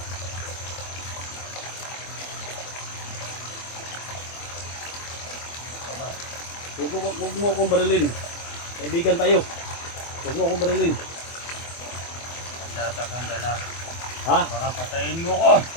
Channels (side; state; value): right; late; 24 ms